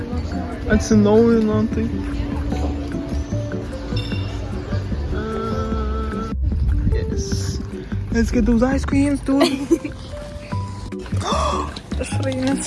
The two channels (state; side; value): identical; both; correlation 1.00